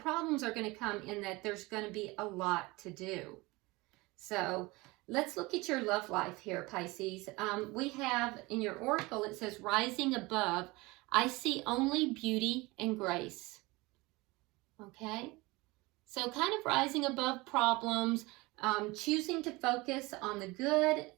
are going to come in that there's going to be a lot to do. So let's look at your love life here, Pisces. We have in your oracle, it says, rising above, I see only beauty and grace. Okay? So kind of rising above problems, choosing to focus on the good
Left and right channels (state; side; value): quieter; left; 22.9 dB